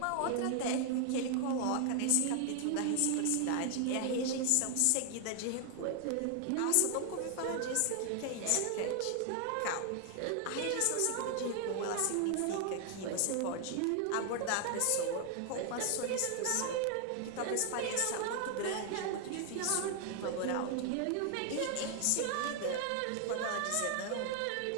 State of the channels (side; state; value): both; different; correlation 0.00